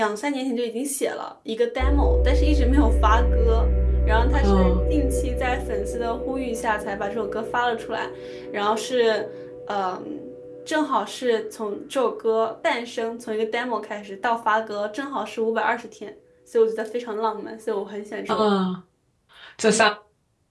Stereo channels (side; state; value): both; identical; correlation 1.00